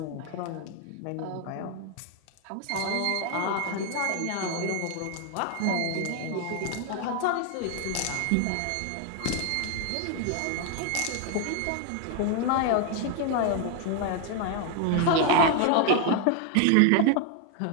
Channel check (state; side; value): different; both; correlation 0.00